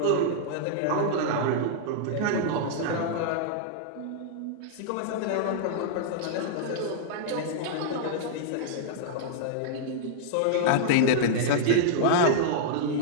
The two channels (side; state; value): both; different; correlation -0.02